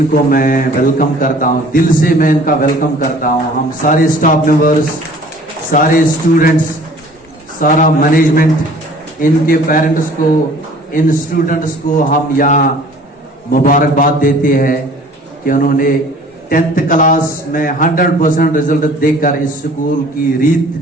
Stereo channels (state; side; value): normal; both; correlation 0.50